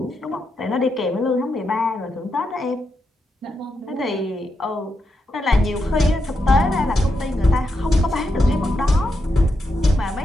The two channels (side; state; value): both; normal; correlation 0.84